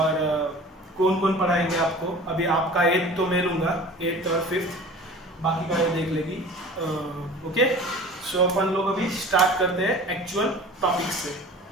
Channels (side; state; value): both; normal; correlation 0.41